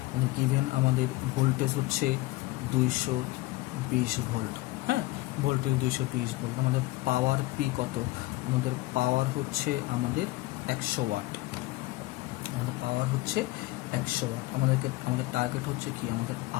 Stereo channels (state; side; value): quieter; right; 19.5 dB